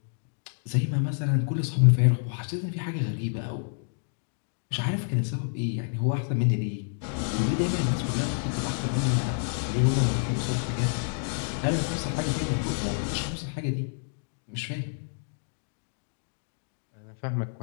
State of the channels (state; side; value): silent; right; digital silence